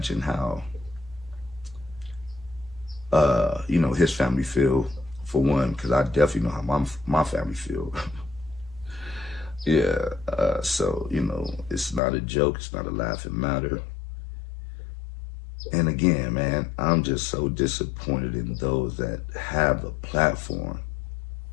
how, you know, his family feel, for one, because I definitely know how my family feel. Yeah, so, you know, it's not a joke, it's not a laughing matter. And again, man, I'm just so disappointed in those that have the platform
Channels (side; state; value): right; drops out; at 12.0 s